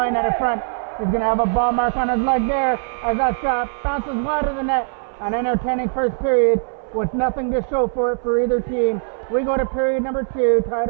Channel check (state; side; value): silent; left; 64 dB below the other